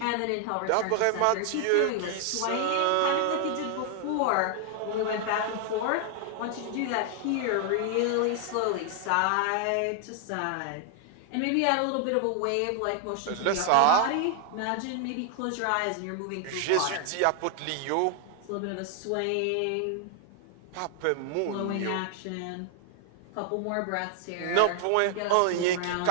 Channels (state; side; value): different; both; correlation 0.00